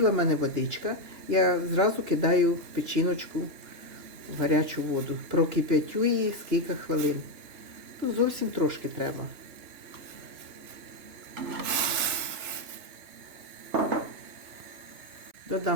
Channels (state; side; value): late; left; 3.3 ms